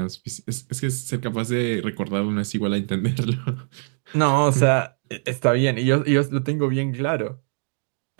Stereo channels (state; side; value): silent; left; digital silence